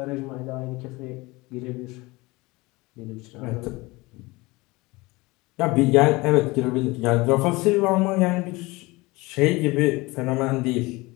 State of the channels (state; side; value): quieter; right; 22.7 dB